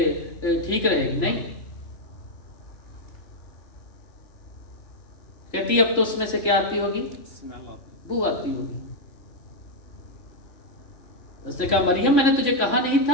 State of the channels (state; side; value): late; right; 3.5 ms